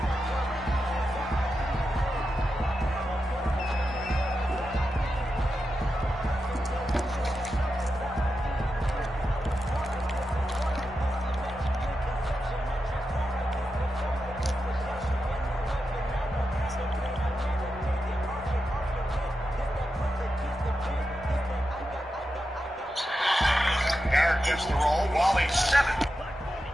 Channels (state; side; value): normal; both; correlation 0.89